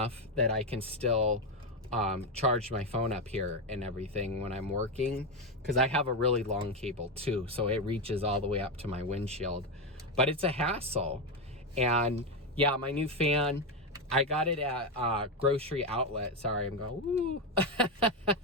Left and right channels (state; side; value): normal; both; correlation 0.10